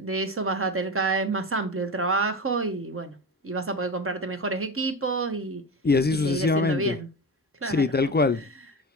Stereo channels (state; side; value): normal; both; correlation 0.25